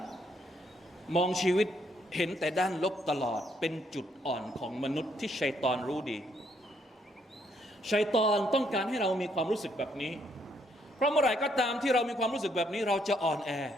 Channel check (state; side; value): normal; both; correlation 0.72